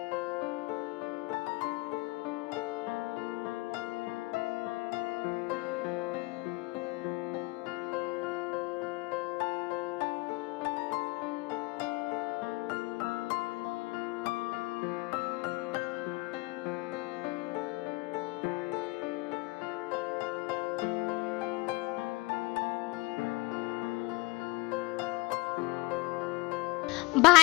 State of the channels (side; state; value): right; quieter; 23.3 dB